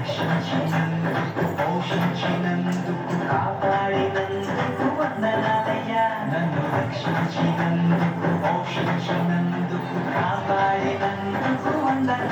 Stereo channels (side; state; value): both; identical; correlation 1.00